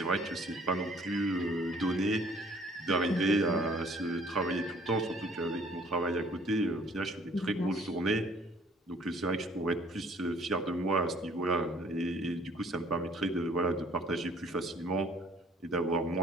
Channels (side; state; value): both; normal; correlation 0.57